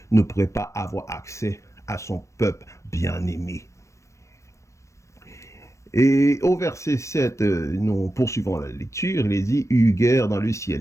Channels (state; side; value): late; right; 0.15 ms